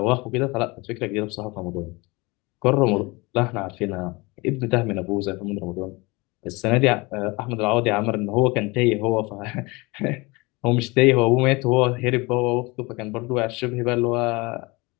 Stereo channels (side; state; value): right; quieter; 24.8 dB